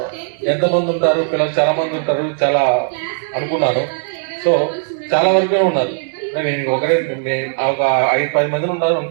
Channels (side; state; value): left; silent; digital silence